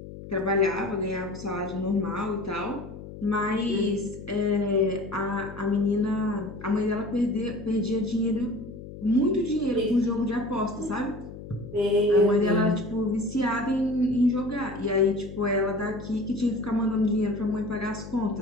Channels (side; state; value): left; noise; hum, 13 dB below the sound